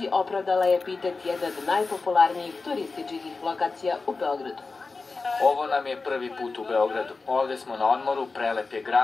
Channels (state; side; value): quieter; right; 4.0 dB